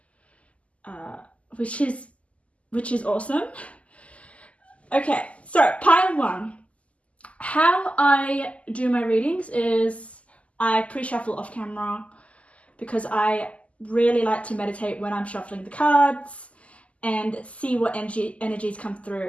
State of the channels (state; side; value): late; right; 0.065 ms